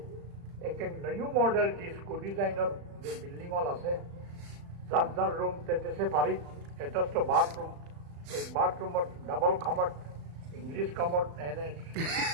এক নিউ মডেল ডিস্কো ডিজাইনের যে বিল্ডিং হল আছে যার রুম তেতে পারি এটাস্ট বাথরুম এই বাথরুমের ডাবল খামার ইংলিশ কমট এনে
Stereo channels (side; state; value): left; late; 35 ms